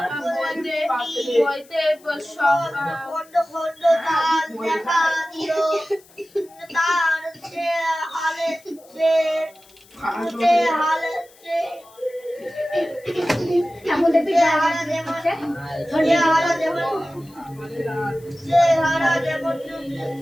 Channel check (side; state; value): left; noise; hiss, 27 dB below the sound